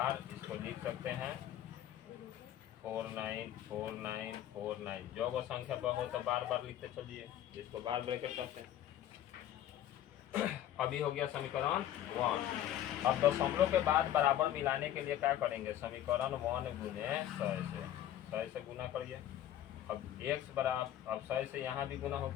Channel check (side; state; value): right; quieter; 11.9 dB